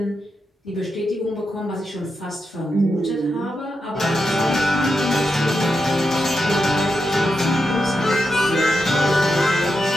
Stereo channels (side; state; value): both; normal; correlation 0.86